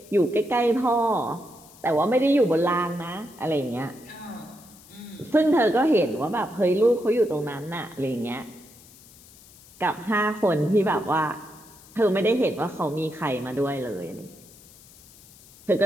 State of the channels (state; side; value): noise; left; hiss, 23 dB below the sound